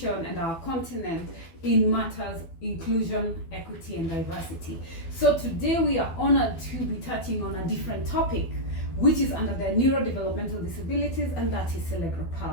and our continent in matters inclusion, equity, and diversity. So today we are honored to be touching on a different topic, which is under the neurodevelopmental disabilities, and that is cerebral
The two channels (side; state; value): right; late; 12 ms